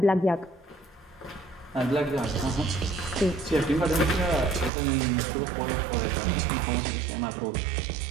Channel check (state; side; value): drops out; left; at 4.7 s